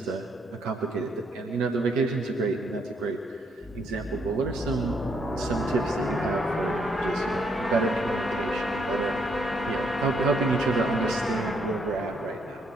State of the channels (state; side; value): normal; both; correlation 0.72